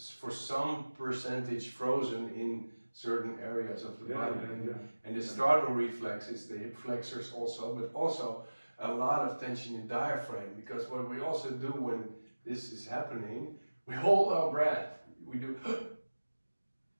for some percentage frozen in certain areas of the body. And the startle reflex is the hip flexors also, but also a lot of tension in diaphragm, because what we also do when this is happening, we hold our breath. We do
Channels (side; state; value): both; inverted; correlation -1.00